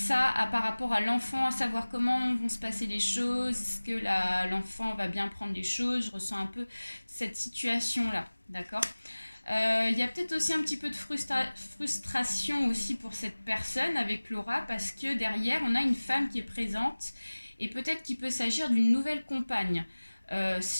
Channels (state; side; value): inverted; both; correlation -1.00